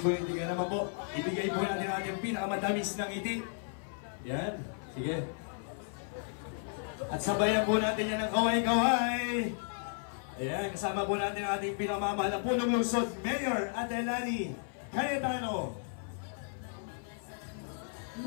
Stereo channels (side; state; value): right; silent; 55 dB below the other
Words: Kaya naman po, ibigay po natin ang ating pinakamatamis ng ngiti. Ayan, sige. At sabayan po natin yan ng kaway-kaway. Ayan, kasama po natin ang ating pinamamahal na punong lungsod, Mayor Ate Lani Cayetano.